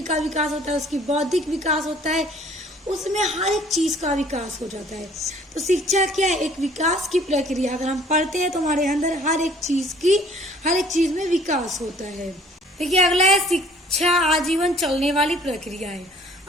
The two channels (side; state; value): both; normal; correlation 0.55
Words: का विकास होता है, उसकी बौद्धिक विकास होता है, उसमें हर एक चीज़ का विकास हो जाता है। तो शिक्षा क्या है? एक विकास की प्रक्रिया। अगर हम पढ़ते हैं तो हमारे अंदर हर एक चीज़ में विकास होता है। देखिए अगला है शिक्षा आजीवन चलने वाली प्रक्रिया है।